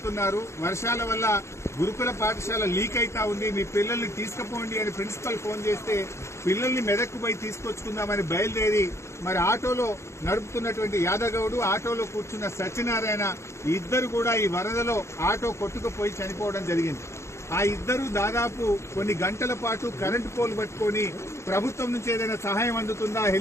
వర్షాల వల్ల గురుకుల పాఠశాల లీక్ అయితా ఉంది, మీ పిల్లల్ని తీసుకుపోండి అని ప్రిన్సిపల్ ఫోన్ చేస్తే పిల్లల్ని మెదక్కు పోయి తీసుకొచ్చుకుందామని బయలుదేరి మరి ఆటోలో నడుపుతున్నటువంటి యాదగౌడు, ఆటోలో కూర్చున్న సత్యనారాయణ ఇద్దరు కూడా ఈ వరదలో ఆటో కొట్టుకుపోయి చనిపోవడం జరిగింది. ఆ ఇద్దరు దాదాపు కొన్ని గంటల పాటు కరెంటు పోల్ పట్టుకొని ప్రభుత్వం నుంచి ఏదైనా సహాయం అందుతుందా,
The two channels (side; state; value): right; late; 0.13 ms